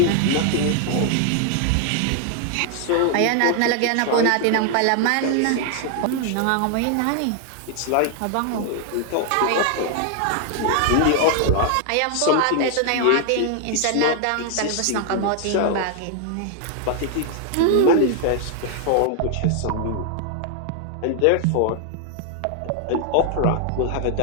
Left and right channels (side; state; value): both; different; correlation 0.00